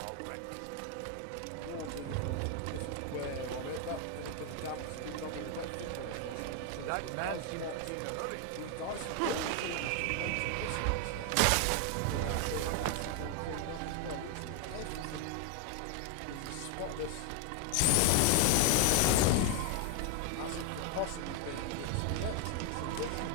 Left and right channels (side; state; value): both; different; correlation 0.01